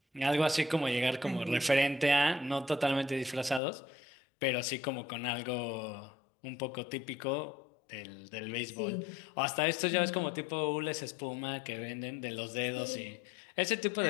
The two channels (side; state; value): right; drops out; at 3.6 s